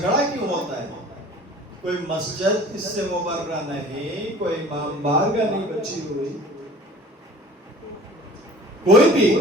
کیوں ہوتا ہے؟ کوئی مسجد اس سے مبرہ نہیں، کوئی امام بارگاہ نہیں بچی ہوئی. کوئی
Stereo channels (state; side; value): normal; both; correlation 0.46